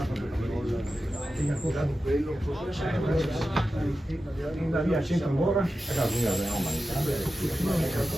Via, centro ancora.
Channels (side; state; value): both; normal; correlation 0.92